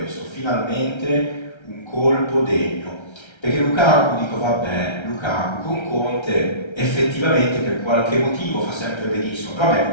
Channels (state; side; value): late; right; 1.3 ms